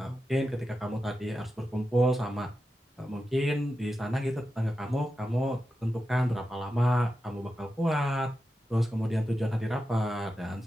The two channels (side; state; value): both; normal; correlation 0.90